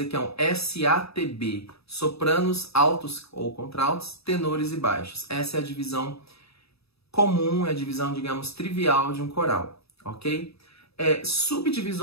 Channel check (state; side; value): late; right; 0.78 ms